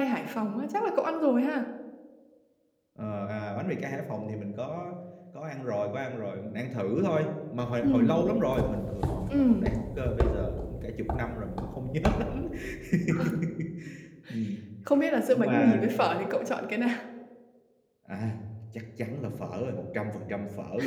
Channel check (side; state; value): both; identical; correlation 1.00